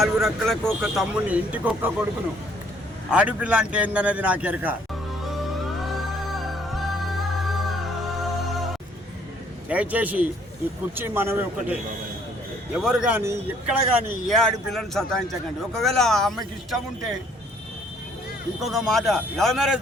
రెక్కలకు ఒక తమ్ముని, ఇంటికి ఒక్క కొడుకును. ఆడపిల్ల అంటే ఏందనేది నాకు ఎరక. దయచేసి ఈ కుర్చీ మనమే ఒకటే. ఎవరు కానీ ఎక్కడ కానీ ఏ ఆడపిల్లని సతాయించకండి. ఒకవేళ ఆ అమ్మాయికి ఇష్టం ఉంటే ఇంకొక మాట, love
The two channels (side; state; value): both; normal; correlation 0.62